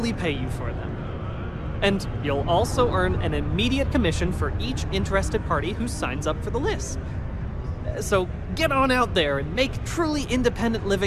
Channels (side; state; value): both; identical; correlation 1.00